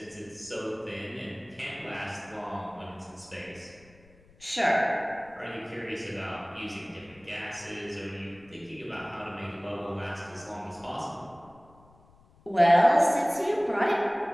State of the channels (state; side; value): noise; left; rumble, 27 dB below the sound